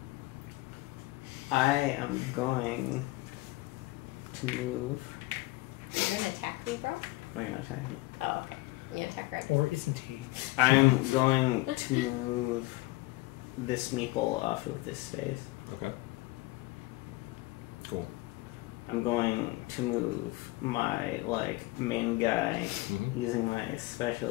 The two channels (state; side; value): quieter; right; 20.4 dB